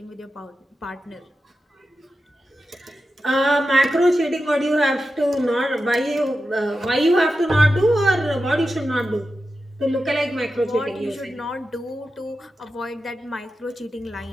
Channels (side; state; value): both; normal; correlation 0.91